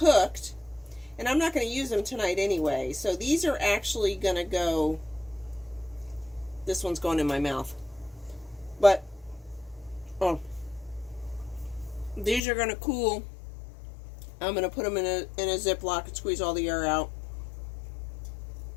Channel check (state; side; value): drops out; right; at 12.4 s